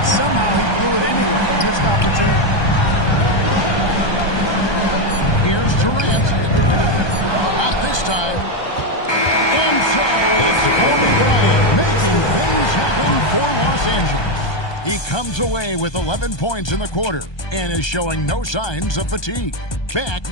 somehow he blew it anyway. Missed opportunity. Here's Durant. Not this time. And so it's Kobe Bryant making things happen for Los Angeles. He comes away with 11 points in the quarter and is showing no signs of fatigue. Back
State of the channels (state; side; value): late; right; 1.2 ms